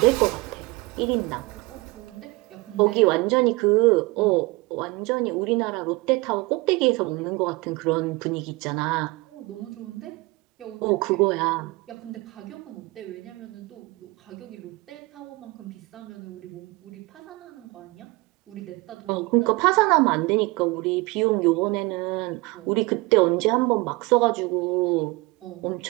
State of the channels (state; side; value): quieter; left; 24.0 dB